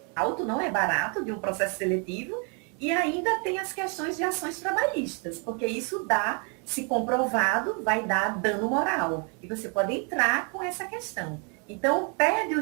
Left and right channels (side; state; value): left; quieter; 37.2 dB